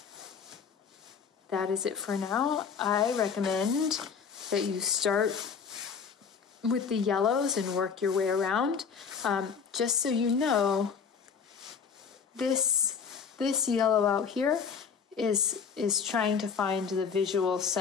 That is it for now. I recommend that you start with the yellows and work your way around. Just so you know, this yellow out here is trying to find the visual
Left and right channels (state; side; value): quieter; right; 6.3 dB